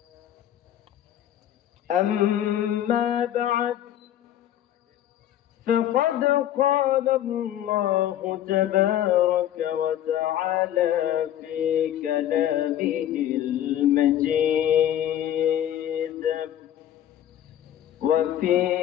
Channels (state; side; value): quieter; right; 11.6 dB